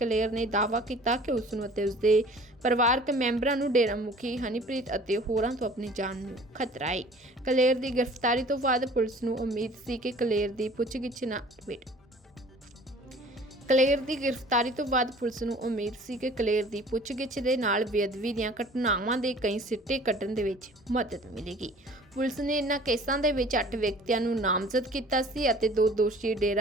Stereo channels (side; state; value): both; normal; correlation 0.48